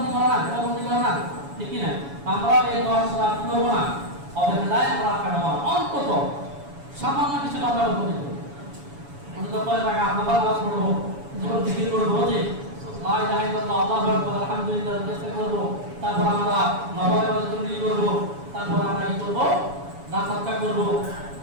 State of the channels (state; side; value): late; left; 7.1 ms